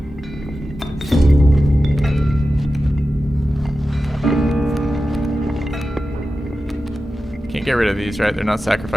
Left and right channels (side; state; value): both; normal; correlation 0.93